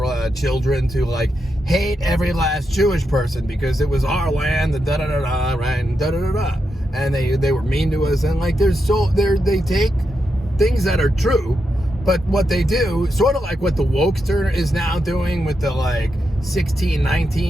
children to hate every last Jewish person because it was our land, the da-da-da-da, right, and da-da-da-da. And they were mean to us, and they take things that are true, but what they do, sort of what the wokester is now doing with the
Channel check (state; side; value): normal; both; correlation 0.85